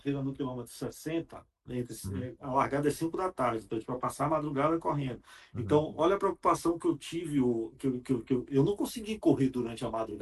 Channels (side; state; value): both; identical; correlation 1.00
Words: no quilômetro 60, Uhum. a largada é 5 da tarde, então para passar a madrugada correndo. Uhum. Então, olha a preocupação que eu tive, eu não consegui correr durante a